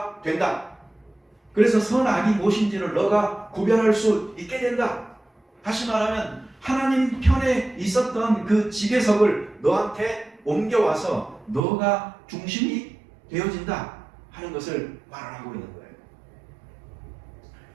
된다. 그래서 선악이 무엇인지를 너가 구별할 수 있게 된다. 다시 말하면 하나님 편에 있었던 그 지배석을 너한테 옮겨와서 너가 중심이 되어진다 하는 것을 말을 하고 있는 거예요.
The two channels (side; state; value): left; drops out; at 11.6 s